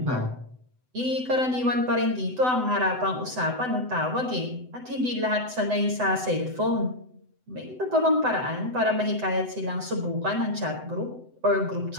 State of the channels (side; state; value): left; late; 7.9 ms